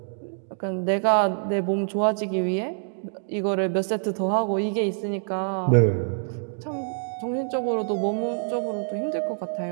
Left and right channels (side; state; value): left; silent; digital silence